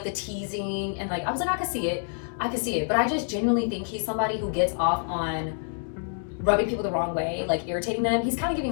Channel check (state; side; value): silent; right; digital silence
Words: the teasing, and like, I was like, I could see it, but I just genuinely think he's somebody who gets off on rubbing people the wrong way, like irritating them. He's kind of